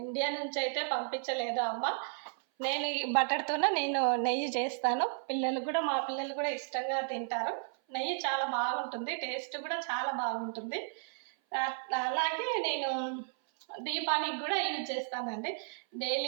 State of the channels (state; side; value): silent; left; 55 dB below the other